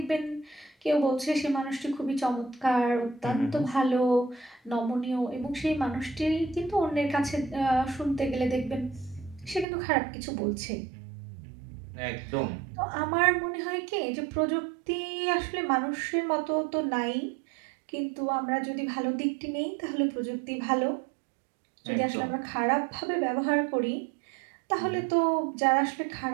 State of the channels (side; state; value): left; drops out; at 9.7 s